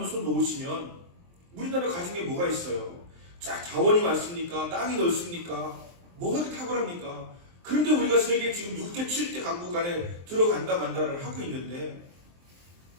손 놓으시면 우리나라 가정에 뭐가 있어요? 자, 자원이 많습니까? 땅이 넓습니까? 뭐가 그렇게 탁월합니까? 그런데 우리가 세계 지금 6대, 7대 강국 안에 들어간다 만다를 하고 있는데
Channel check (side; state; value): left; late; 23 ms